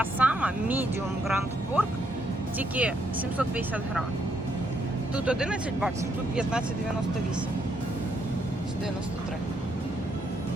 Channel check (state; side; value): normal; both; correlation 0.75